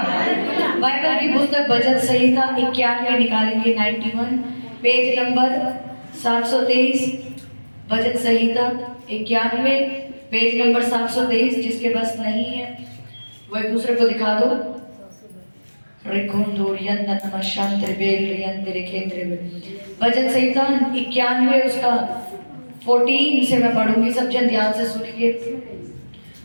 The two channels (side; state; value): both; inverted; correlation -1.00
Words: बाइबल की पुस्तक भजन संहिता 91 निकालेंगे, 91 पेज नंबर 723। भजन संहिता 91 पेज नंबर 723। जिसके पास नहीं है वो एक दूसरे को दिखा दो। भजन संहिता 91 उसका 14 से मैं पढ़ूंगी, सब जन ध्यान से सुनिए।